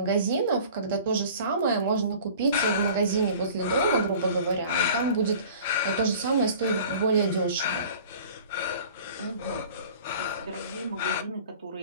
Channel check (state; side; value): inverted; both; correlation -0.45